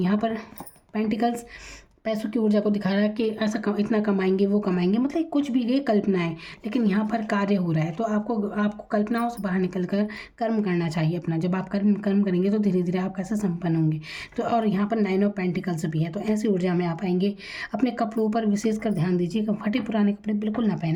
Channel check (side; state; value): both; identical; correlation 1.00